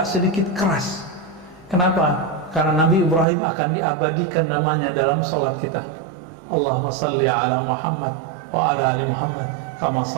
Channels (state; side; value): drops out; left; at 3.2 s